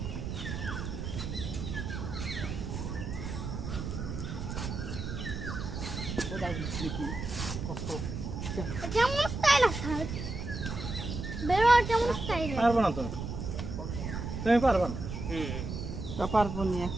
কেমন স্টাইল আছে বেরো কেমন স্টাইল পারবো না তুমি পারবা না তা পারবো না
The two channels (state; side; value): noise; right; rumble, 5 dB below the sound